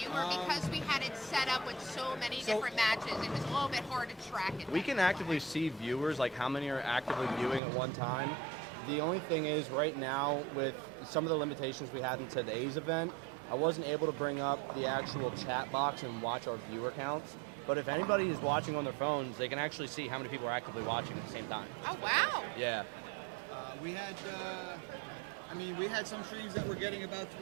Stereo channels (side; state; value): left; drops out; at 7.6 s